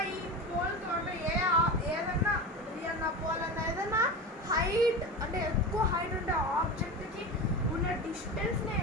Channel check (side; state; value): both; normal; correlation 0.26